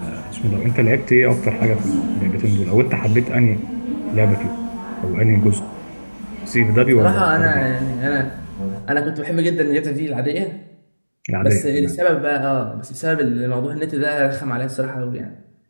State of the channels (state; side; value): inverted; both; correlation -1.00